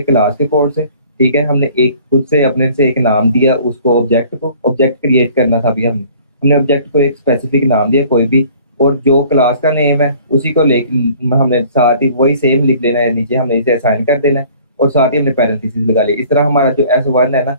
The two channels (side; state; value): both; inverted; correlation -0.52